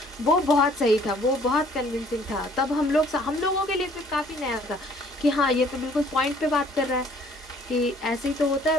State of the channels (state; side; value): normal; both; correlation 0.58